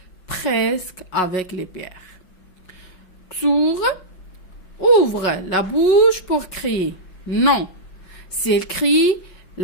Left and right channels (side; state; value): right; late; 5.4 ms